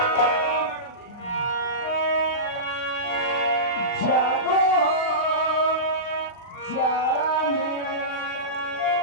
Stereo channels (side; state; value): right; late; 39 ms